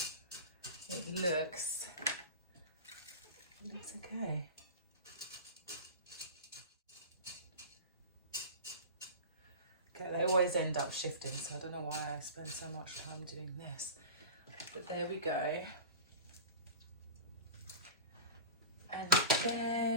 It looks okay. Okay, they always end up shifting, so I don't know why I spend so much time doing this. But there we go. And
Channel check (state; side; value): inverted; both; correlation -0.32